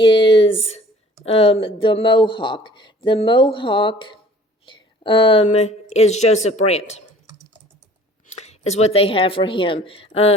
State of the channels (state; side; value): normal; both; correlation 0.51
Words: the Mohawk. The Mohawk is Joseph Brant, is what they have for him.